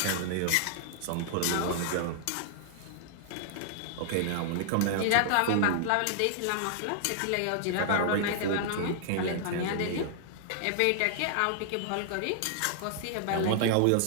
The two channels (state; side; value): different; both; correlation -0.01